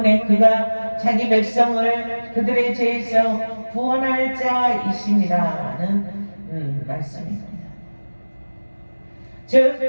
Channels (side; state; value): both; inverted; correlation -1.00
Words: 그가 자기 백성을 그들의 죄에서 구원할 자이심이라는 말씀입니다. 즉